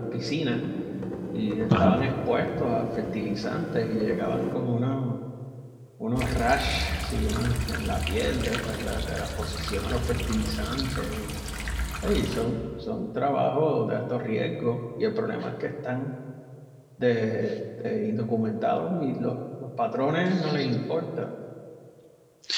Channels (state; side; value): identical; both; correlation 1.00